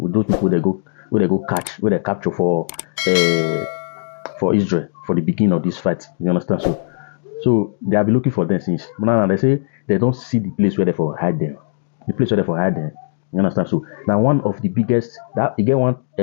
with those people they go catch, where they capture for Israel for the beginning of this fight. You understand? So they have been looking for them since. But now they say they don't see the place where they for hide them. The place where they for hide them. You understand? So now one of the biggest that you get one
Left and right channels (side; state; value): right; silent; digital silence